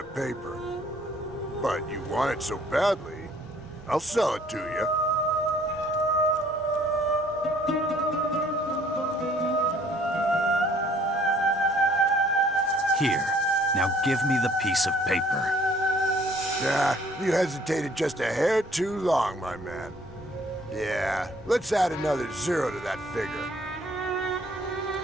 paper. But you want it so badly, I'll sell it to you. Here. Now give me the piece of paper. Nah, you hesitated just a hair too long, my man. Yeah, let's add another 0 to that figure.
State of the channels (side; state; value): both; normal; correlation 0.59